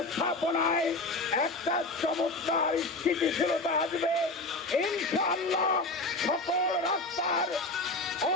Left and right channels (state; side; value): quieter; right; 3.0 dB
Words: একটা চমৎকার স্থিতিশীলতা আসবে। ইনশাআল্লাহ সকল রাস্তার